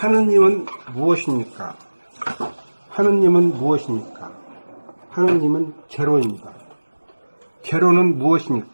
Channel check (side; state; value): both; inverted; correlation -1.00